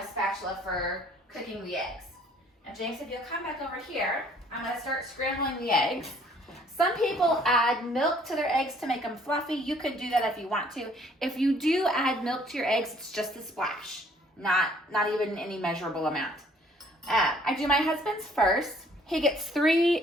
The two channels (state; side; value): normal; both; correlation 0.59